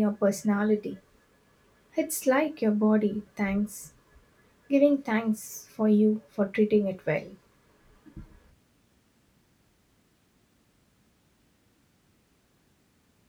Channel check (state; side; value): identical; both; correlation 1.00